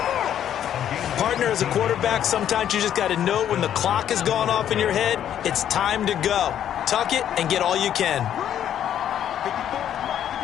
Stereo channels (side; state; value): right; quieter; 10.2 dB